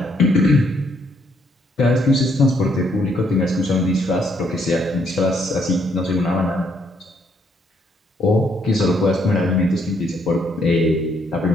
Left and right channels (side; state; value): both; normal; correlation 0.71